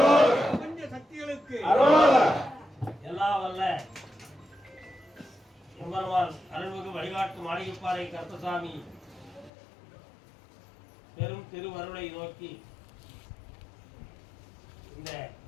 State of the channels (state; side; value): drops out; right; at 9.5 s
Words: சக்திகளுக்கு எல்லாம் வல்ல எம்பெருமான் அருள்மிகு வழிகாட்டு மாளிகைப்பாறை கருப்பசாமி பெரும் திருவருளை நோக்கி இந்த